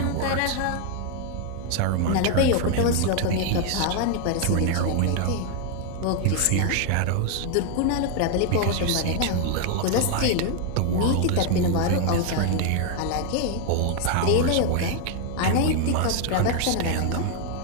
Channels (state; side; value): different; both; correlation 0.01